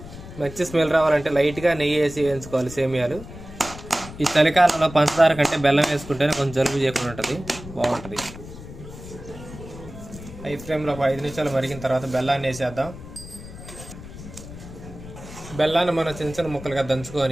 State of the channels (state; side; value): noise; left; rumble, 14 dB below the sound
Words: మంచి స్మెల్ రావాలంటే లైట్గా నెయ్యి వేసి వేయించుకోవాలి సేమియాలు. ఈ చలికాలంలో పంచదార కంటే బెల్లం వేసుకుంటేనే కొంచెం జలుబు చేయకుండా ఉంటుంది, బాగుంటుంది. హై ఫ్లేమ్లో ఒక 5 నిమిషాలు మరిగిన తర్వాత బెల్లాన్ని వేసేద్దాం. బెల్లాన్ని మనం చిన్న చిన్న ముక్కలుగా